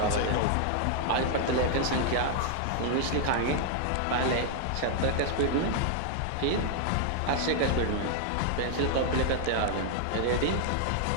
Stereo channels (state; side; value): different; both; correlation 0.00